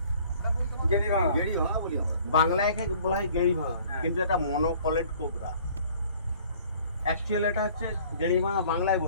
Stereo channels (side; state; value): both; inverted; correlation -0.54